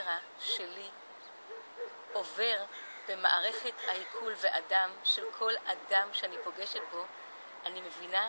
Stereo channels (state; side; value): inverted; both; correlation -1.00